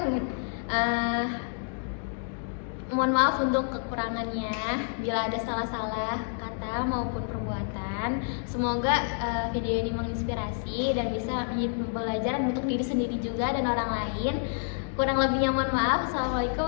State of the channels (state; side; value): silent; right; digital silence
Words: Mohon maaf untuk kekurangannya bila ada salah-salah kata maupun perbuatan. Semoga video ini menginspirasi dan bisa menjadi pembelajaran untuk diri sendiri juga dan orang lain. Kurang lebihnya mohon maaf. Assalamualaikum